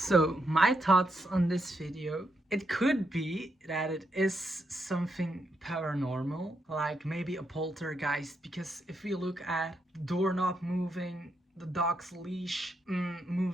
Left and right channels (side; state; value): both; normal; correlation 0.81